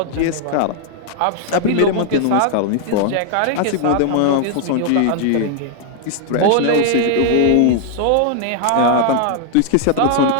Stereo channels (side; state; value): both; different; correlation 0.00